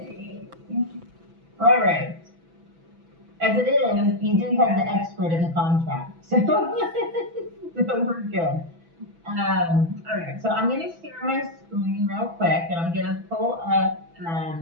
All right. As it is, you do have the expert in the contract, so, so we're good. All right, so I'm going to share my screen real quick, and I'm going to pull up.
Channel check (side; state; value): left; late; 6.0 ms